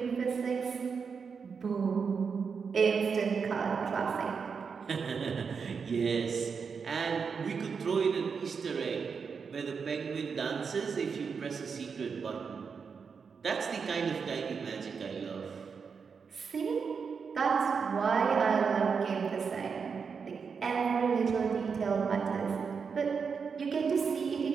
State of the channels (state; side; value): quieter; left; 5.8 dB